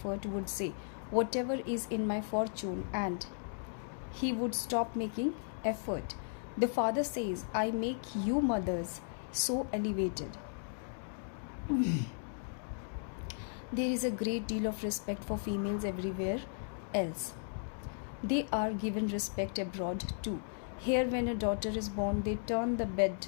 would say, whatever is in my fortune, and he would stop making effort. The father says, I make you mothers so elevated. There is a great deal of respect for females everywhere else. They are given respect abroad too. Here, when a daughter is born, they turn the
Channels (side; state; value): right; silent; digital silence